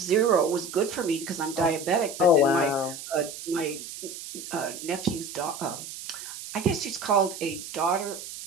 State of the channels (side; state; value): right; noise; hiss, 11 dB below the sound